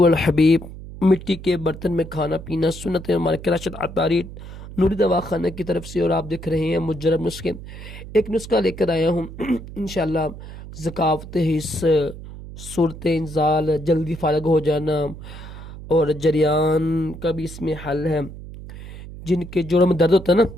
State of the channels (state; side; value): noise; right; hum, 13 dB below the sound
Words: अल हबीब। मिट्टी के बर्तन में खाना पीना सुन्नत हमारे कराशत अतारी नूरी दवा खाना की तरफ से। और आप देख रहे हैं मुजरब नुस्खे। एक नुस्खा लेकर आया हूँ इंशाअल्लाह। ज़कावत हिस्स, सूरत इंजाल, जल्दी फारग हो जाना और जरियान का भी इसमें हल है। जिनके जोड़ों में दर्द होता है ना,